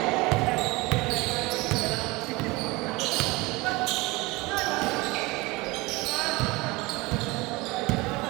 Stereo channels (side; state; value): left; quieter; 23.0 dB